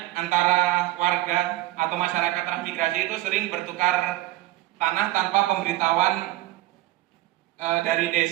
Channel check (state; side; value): quieter; left; 17.1 dB